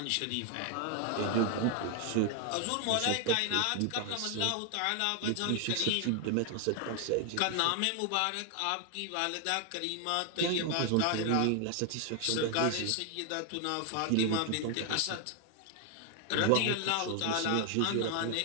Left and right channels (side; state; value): both; different; correlation 0.00